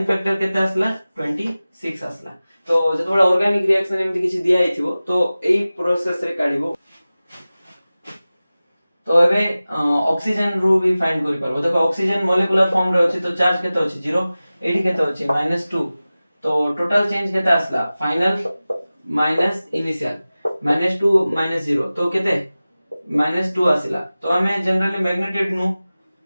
फैक्टर केते आसला 26 आसला तो जतबे ऑर्गेनिक रिएक्शन एमति किछि दिया हिथिबो तो एई प्रोसेस रे काढिबो तो एबे ऑक्सीजन रू भी फाइंड करि पारबो देखो ऑक्सीजन मॉलिक्यूलर फॉर्म रे अछि तो चार्ज केते अछि 0 एडी केते अछि -2 तो टोटल चेंज केते आसला फाइनल माइनस इनिशियल -2 -0 तो केते -2 आसिला तो हमें जनरली मैग्नीट्यूड नु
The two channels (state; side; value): inverted; both; correlation -0.97